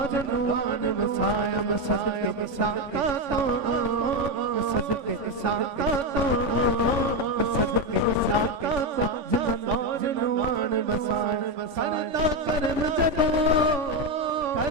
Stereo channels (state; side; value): late; left; 3.5 ms